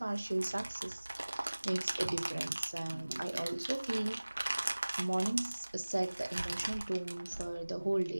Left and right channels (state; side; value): inverted; both; correlation -1.00